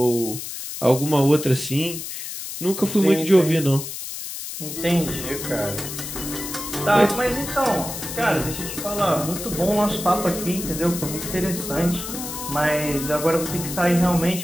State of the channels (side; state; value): left; noise; hiss, 8 dB below the sound